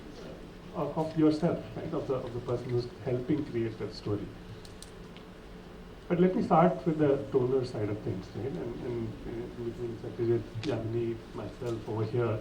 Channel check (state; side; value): identical; both; correlation 1.00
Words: yourself, right? Of the person who's helping create that story. But let me start with the donor side of things, right? And between Satyajit, Yamini, myself over here,